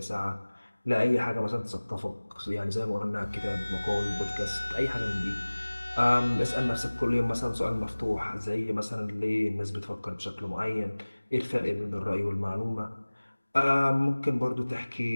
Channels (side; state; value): both; inverted; correlation -1.00